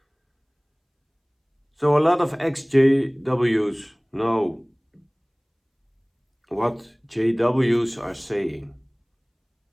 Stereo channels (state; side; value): identical; both; correlation 1.00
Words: So a lot of ex-JWs know what JWs are saying.